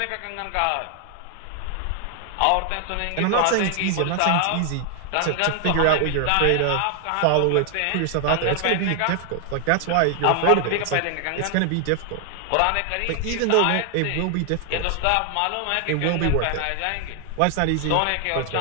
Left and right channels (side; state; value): both; different; correlation 0.00